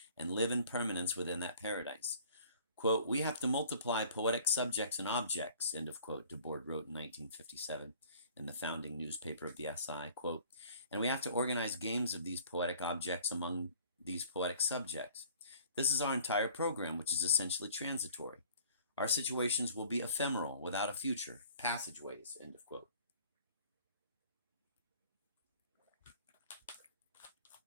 and live in permanence within that paradise. Quote, "We have to multiply poetic subjects and objects," end of quote, Debord wrote in 1957 in the founding newspaper of the SI, quote, "and we have to organize games of these poetic objects among these poetic subjects. This is our entire program, which is essentially transitory. Our situations will be ephemeral, without a future, passageways," end of quote.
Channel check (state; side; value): inverted; both; correlation -0.51